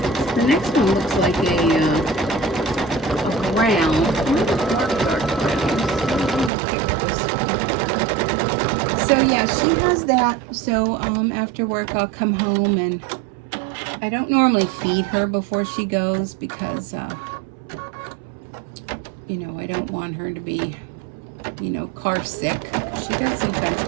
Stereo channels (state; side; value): drops out; left; at 6.5 s